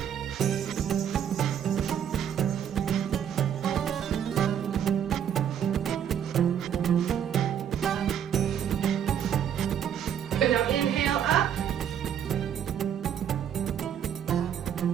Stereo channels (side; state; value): left; quieter; 9.0 dB